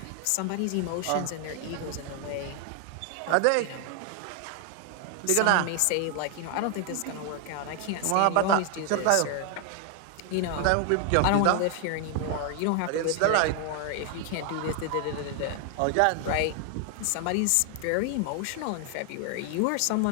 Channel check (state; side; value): different; both; correlation 0.00